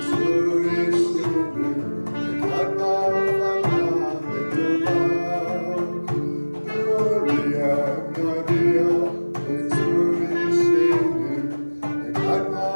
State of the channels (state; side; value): inverted; both; correlation -1.00